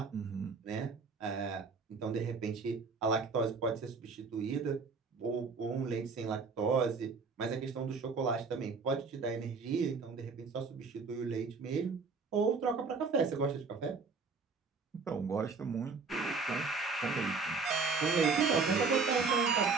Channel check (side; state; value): left; quieter; 4.7 dB